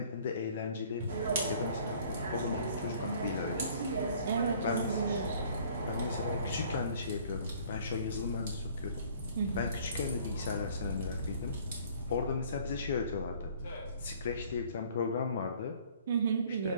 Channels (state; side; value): inverted; both; correlation -0.55